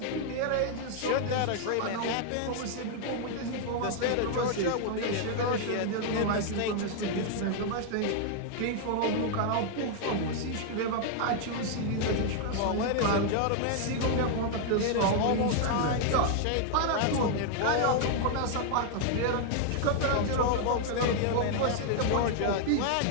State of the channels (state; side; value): different; both; correlation 0.00